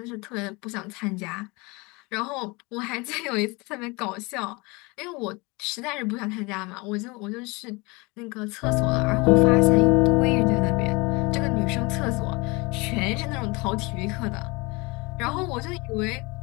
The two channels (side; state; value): right; quieter; 26.1 dB